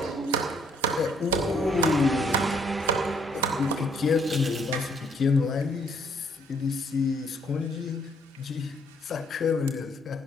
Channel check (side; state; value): both; normal; correlation 0.67